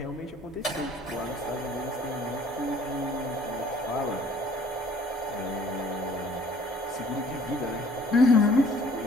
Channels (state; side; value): normal; both; correlation 0.56